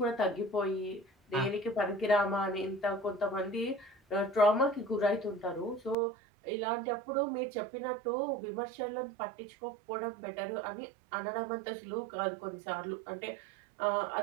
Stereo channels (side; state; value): left; drops out; at 6.0 s